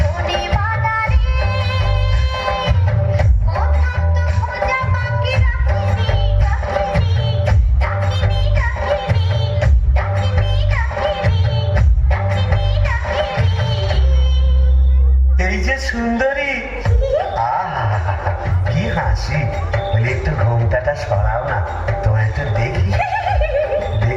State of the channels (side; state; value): both; identical; correlation 1.00